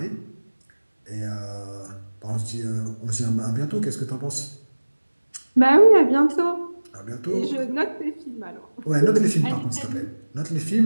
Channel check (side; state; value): both; inverted; correlation -1.00